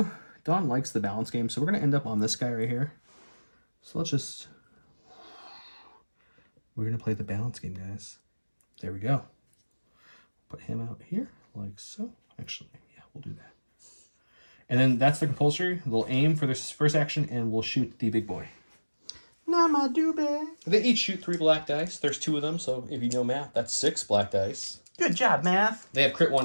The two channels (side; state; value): both; inverted; correlation -1.00